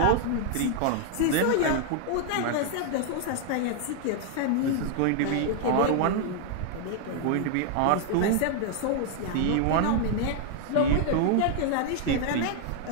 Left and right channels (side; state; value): both; different; correlation 0.00